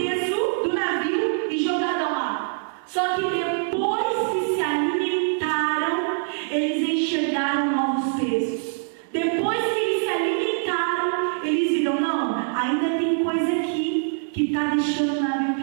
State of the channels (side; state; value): left; silent; digital silence